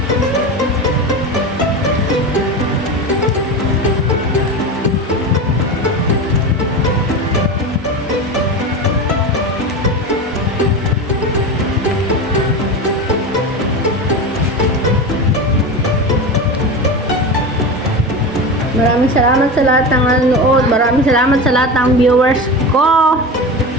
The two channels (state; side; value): normal; both; correlation 0.24